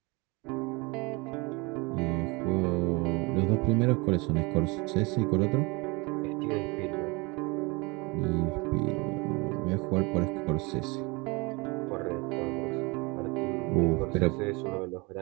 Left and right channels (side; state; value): left; quieter; 27.1 dB